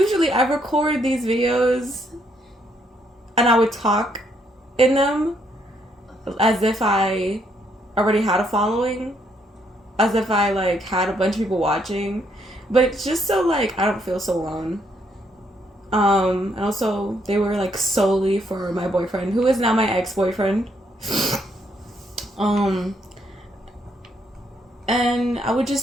I record these videos and I would talk in them as if I already had a following, as if I like had a bunch of people watching, but it's just so like I don't feel so alone. And also they were like solely for my boyfriend, who is now my ex-boyfriend. um, and I would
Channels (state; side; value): normal; both; correlation 0.73